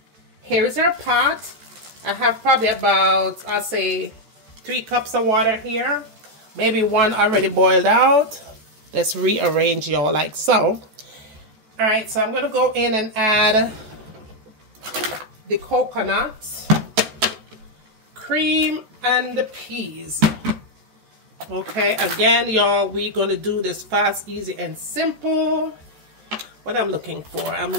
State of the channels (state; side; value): late; left; 13 ms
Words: here's our pot. I have probably about, I'll say, 3 cups of water here. Maybe 1 already boiled out. Let's rearrange, y'all, like so. Alright, so I'm going to go in and add the coconut, cream, and the peas. Okay, again, y'all, we're going to do this fast, easy, and simple. What I'm looking for, I'm